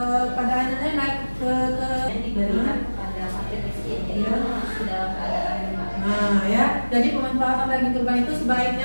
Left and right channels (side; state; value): both; inverted; correlation -1.00